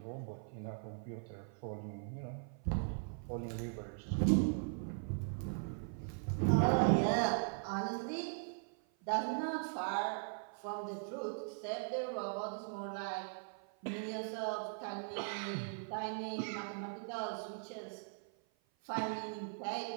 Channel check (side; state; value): left; silent; 51 dB below the other